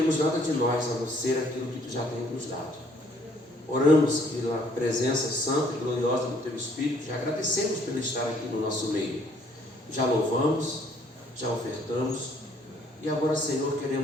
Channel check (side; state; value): both; normal; correlation 0.63